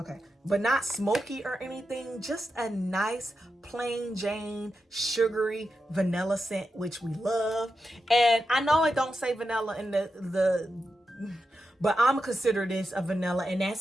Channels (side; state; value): both; normal; correlation 0.88